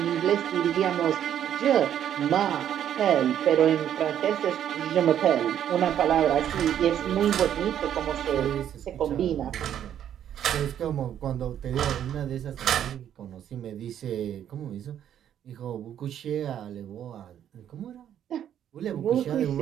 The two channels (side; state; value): left; quieter; 10.1 dB